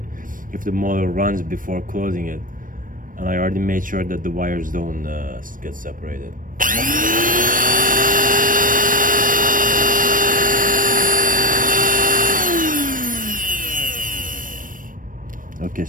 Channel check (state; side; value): late; left; 0.40 ms